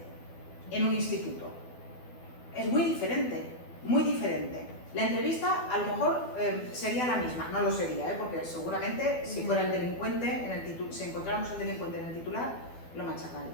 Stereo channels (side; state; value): right; late; 12 ms